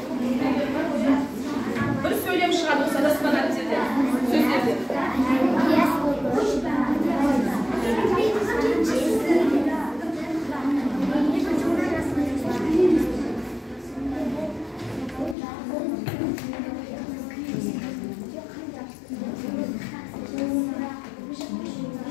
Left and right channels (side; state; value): right; drops out; at 15.4 s